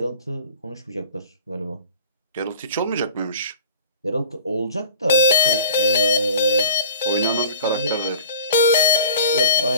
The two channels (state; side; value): inverted; both; correlation -0.45